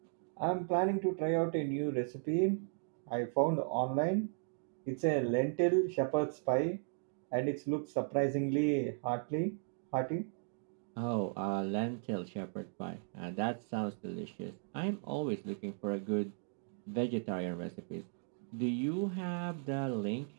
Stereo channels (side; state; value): left; silent; 54 dB below the other